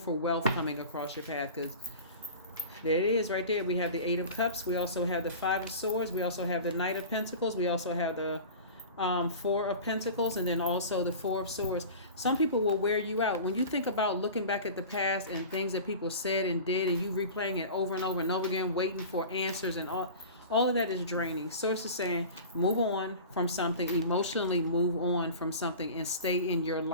wealth coming across your path, because there it is right there. We have the Eight of Cups. We also have the Five of Swords. We also have the Knight of Pentacles. We also have the Four of Pentacles, and then also the Four of Swords. Some people will wear you out. When you think about looking back at the past and things that people said and did, and you replaying it over and over and over again, waiting for answers and all of that is draining. Source is saying move on from something, emotionally move on from something, and stay in your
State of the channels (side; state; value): both; inverted; correlation -0.36